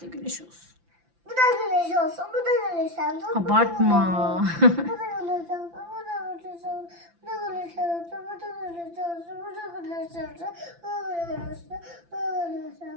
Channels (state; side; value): late; left; 5.9 ms